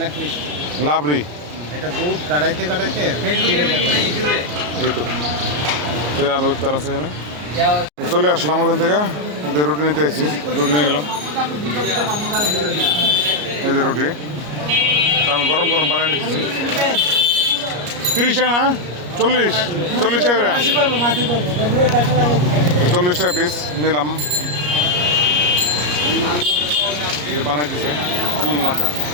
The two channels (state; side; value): late; left; 34 ms